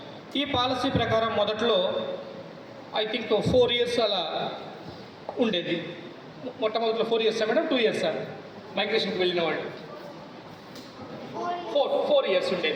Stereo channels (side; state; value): both; identical; correlation 1.00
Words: ఈ పాలసీ ప్రకారం మొదట్లో ఐ థింక్ 4 years అలా ఉండేది. మొట్టమొదటిలో 4 years మేడం, 2 years మైగ్రేషన్కి వెళ్ళిన వాళ్ళు 4 years